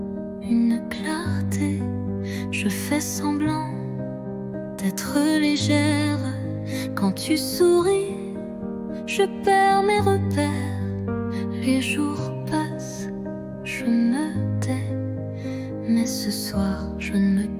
une clarté. Je fais semblant d'être légère. Quand tu souris, je perds mes repères. Les jours passent, je me tais, mais ce soir je ne me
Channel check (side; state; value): both; identical; correlation 1.00